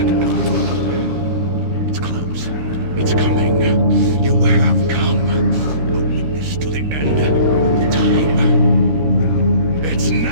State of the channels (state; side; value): late; left; 13 ms